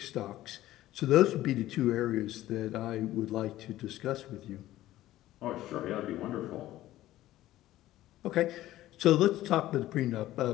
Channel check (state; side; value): quieter; right; 15.0 dB